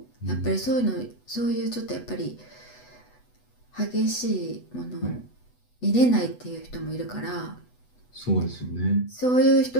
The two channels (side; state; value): right; late; 8.1 ms